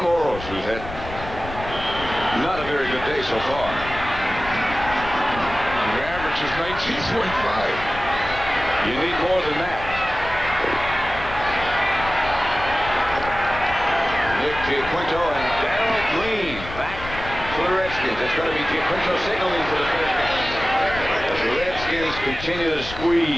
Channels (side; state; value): left; noise; rumble, 12 dB below the sound